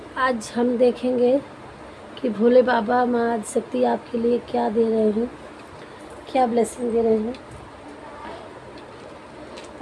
आज हम देखेंगे कि भोले बाबा माँ आदिशक्ति आपके लिए क्या दे रहे हैं, क्या ब्लेसिंग दे रहे हैं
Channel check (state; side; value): identical; both; correlation 1.00